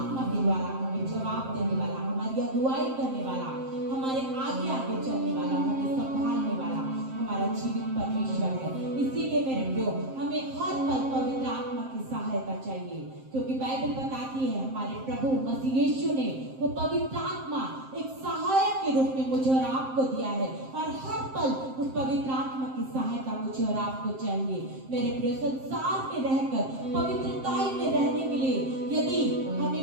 के द्वारा हमें जवाब देने वाला, हमारी अगुवाई करने वाला, हमारे आगे आगे चलने वाला, हमें संभालने वाला हमारा जीवित परमेश्वर है। इसीलिए मेरे प्रियो, हमें हर पल पवित्र आत्मा की सहायता चाहिए, क्योंकि बाइबल बताती है हमारे प्रभु मसीह यीशु ने वो पवित्र आत्मा एक सहायक के रूप में मुझे और आपको दिया है, और हर पल उस पवित्र आत्मा की सहायता मुझे और आपको चाहिए। मेरे प्रिय, संसार में रहकर पवित्रताई में रहने के लिए यदि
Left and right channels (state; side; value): late; left; 7.6 ms